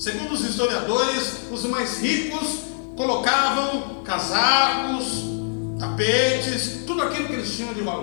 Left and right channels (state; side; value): silent; right; 61 dB below the other